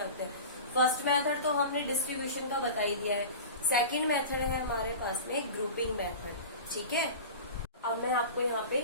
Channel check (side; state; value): both; inverted; correlation -0.33